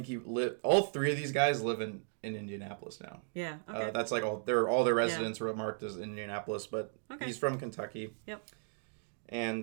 think all three of these guys live in Indianapolis now. Yeah. Okay. That's like all their residents were marked as Indianapolis, but Okay. he's from Kentucky. Yep. And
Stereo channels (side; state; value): left; silent; digital silence